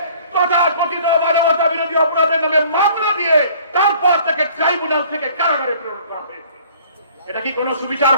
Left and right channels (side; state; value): both; inverted; correlation -0.53